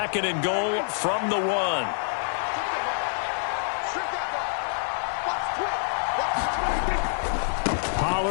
and goal from the 1.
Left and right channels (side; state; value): right; silent; 58 dB below the other